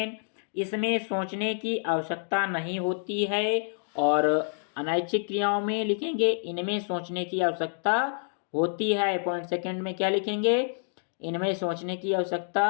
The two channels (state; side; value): silent; right; digital silence